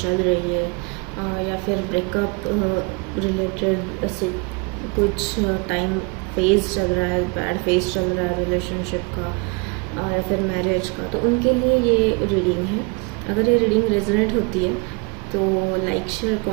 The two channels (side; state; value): left; quieter; 30.8 dB